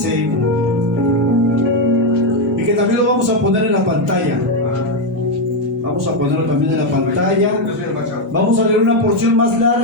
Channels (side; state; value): both; normal; correlation 0.05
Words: y que también lo vamos a poner en la pantalla. Vamos a ponerlo también en la pantalla. Vamos a leer una porción más